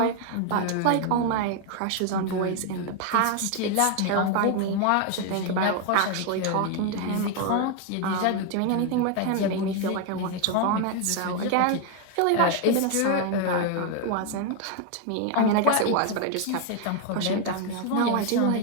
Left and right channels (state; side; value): different; both; correlation 0.01